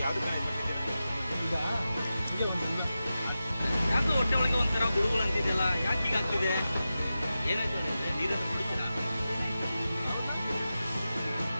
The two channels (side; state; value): both; inverted; correlation -0.93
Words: ಯಾಕೆ ಹೊಟ್ಟೆ ಒಳಗೆ ಒಂಥರ ಗುಡುಗುಳು ಅಂತಿದೆಯಲ್ಲ, ಯಾಕೆ ಹೀಗಾಗ್ತಿದೆ? ಏನಾಯ್ತು? ನೀರನ್ನು ಕುಡಿತೀರಾ?